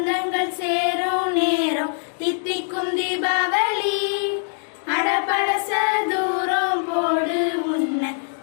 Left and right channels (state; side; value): silent; right; digital silence